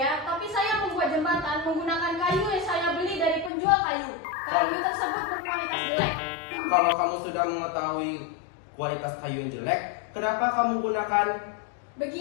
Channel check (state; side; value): drops out; right; at 3.5 s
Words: tapi saya membuat jembatan menggunakan kayu yang saya beli dari penjual kayu. Kayu tersebut berkualitas jelek. Kalau kamu sudah mengetahui kualitas kayu yang jelek, kenapa kamu gunakan?